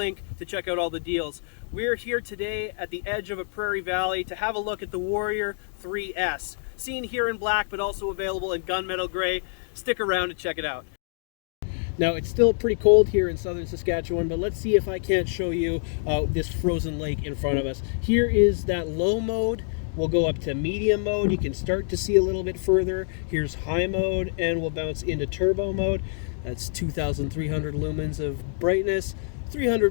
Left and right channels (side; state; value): right; silent; digital silence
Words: to check out all the deals. We're here today at the edge of a prairie valley to have a look at the Warrior 3S. Seen here in black, but also available in gunmetal gray. Stick around to check it out. Now, it's still pretty cold here in southern Saskatchewan, but let's see if I can't show you this frozen lake in front of us. Here is that low mode. We'll go up to medium mode. You can start to see a little bit further. Here's high mode, and we'll bounce into turbo mode. That's 2,300 lumens of brightness, 300